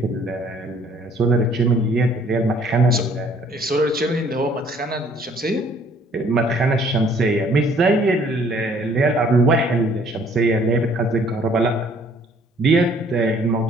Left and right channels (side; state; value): both; normal; correlation 0.59